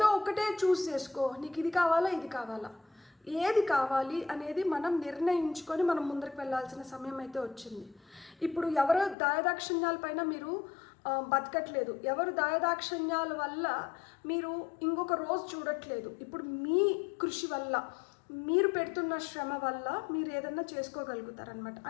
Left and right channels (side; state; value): right; drops out; at 9.2 s